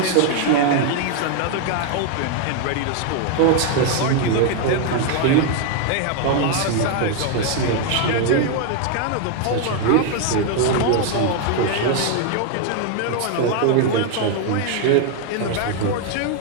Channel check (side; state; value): both; different; correlation 0.00